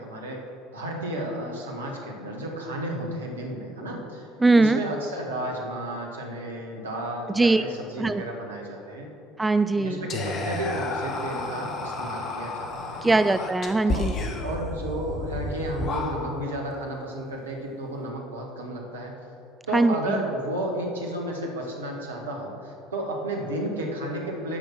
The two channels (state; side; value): normal; both; correlation 0.65